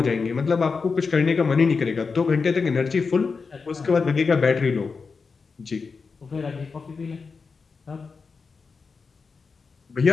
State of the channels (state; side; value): quieter; right; 4.9 dB